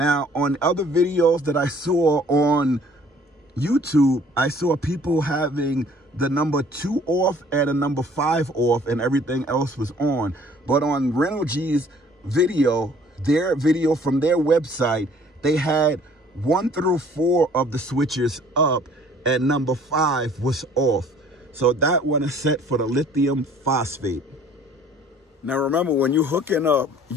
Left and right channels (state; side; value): normal; both; correlation 0.55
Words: on other videos that I saw on YouTube, I saw people having the number 2 off and a number 5 off, and everything else was on. But on Renogy's video, their video from their website, they had 1 through 4 of the switches up and number 5 was off. So that one is set for the lithium phosphate. Now remember, when you're hooking up